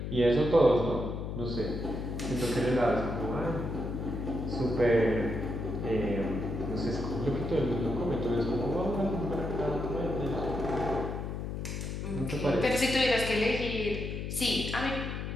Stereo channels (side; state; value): left; noise; hum, 4 dB below the sound